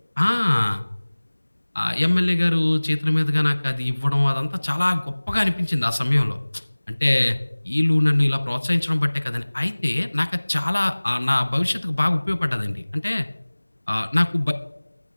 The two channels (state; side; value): inverted; both; correlation -1.00